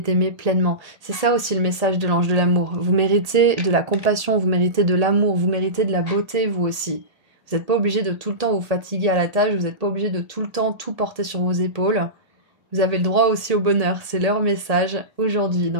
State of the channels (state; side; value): late; left; 1.8 ms